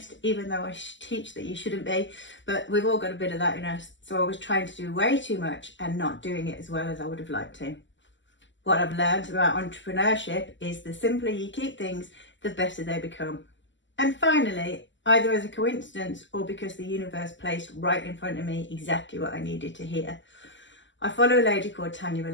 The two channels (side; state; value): right; late; 0.54 ms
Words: even though I teach that you shouldn't be, but we've all got a bit of that in us, so I was trying to do way too much and not doing it as well as I would have liked to. What I've learned about entrepreneurship is the simpler you keep things, the better they become. And finally, either as a coincidence or because the universe placed right in front of me exactly what I needed to hear, I follow a lady called Tanya